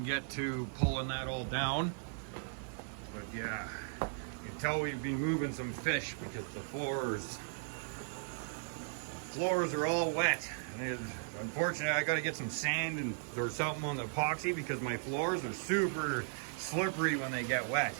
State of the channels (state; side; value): silent; left; digital silence